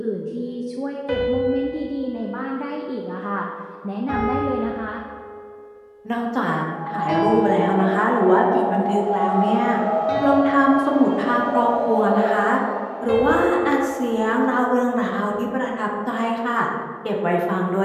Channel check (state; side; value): identical; both; correlation 1.00